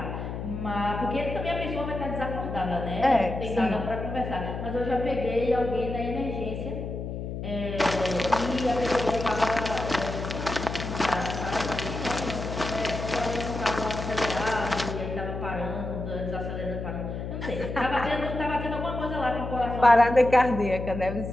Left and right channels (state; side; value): noise; left; hum, 6 dB below the sound